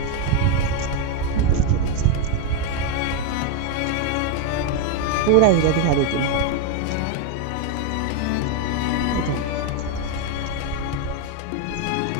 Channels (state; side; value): different; both; correlation 0.01